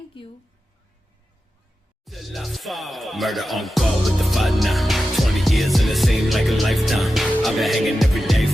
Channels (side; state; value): both; normal; correlation 0.92